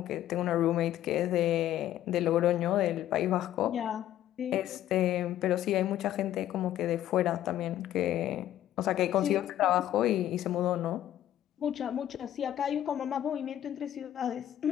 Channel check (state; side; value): quieter; right; 12.3 dB